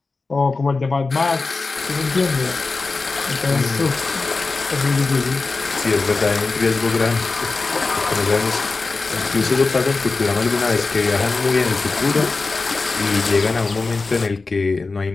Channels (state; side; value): quieter; right; 3.9 dB